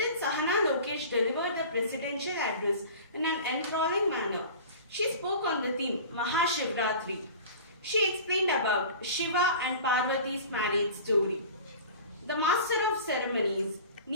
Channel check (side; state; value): both; inverted; correlation -0.39